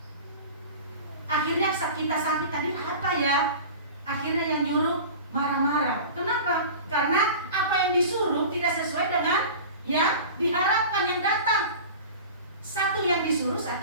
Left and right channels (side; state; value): both; inverted; correlation -0.36